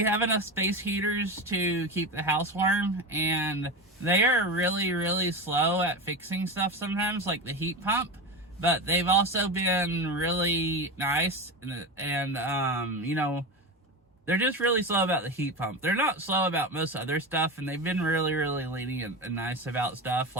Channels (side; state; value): both; normal; correlation 0.22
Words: have enough space heaters to keep the house warm, and they are really, really slow at fixing stuff sometimes, like the heat pump, but they've also been really nice, and you know, they're just really slow about the heat pump. They're not slow about most other stuff, and they've been really, really lenient and nice about stuff.